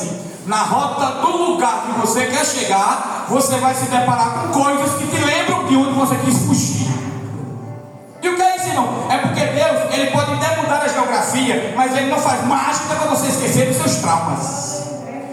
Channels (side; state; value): both; identical; correlation 1.00